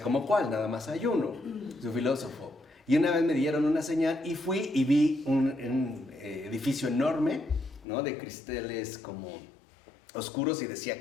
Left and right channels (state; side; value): drops out; right; at 7.9 s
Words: ¿cómo cuál? Nada más hay uno, su filósofo. Y una vez me dieron una señal y fui y vi un edificio enorme, ¿no?, de cristales como oscuros y